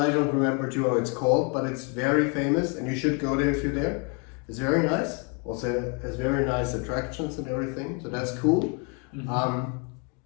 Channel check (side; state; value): right; quieter; 34.2 dB